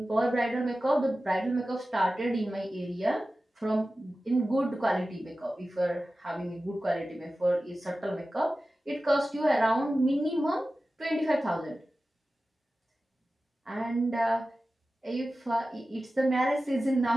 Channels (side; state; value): both; normal; correlation 0.95